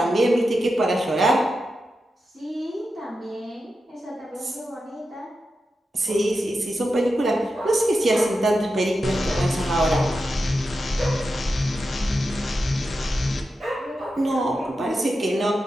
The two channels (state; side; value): normal; both; correlation 0.90